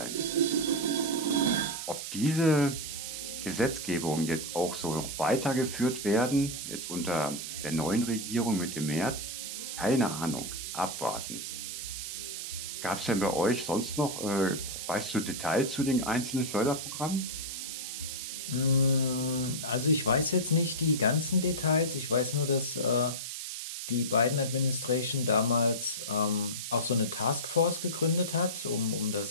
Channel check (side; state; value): right; noise; hiss, 6 dB below the sound